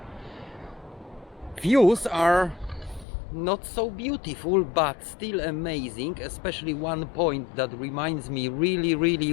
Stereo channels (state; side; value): drops out; right; at 3.1 s